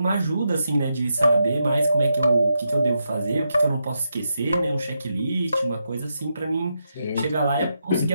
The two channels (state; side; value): inverted; both; correlation -0.85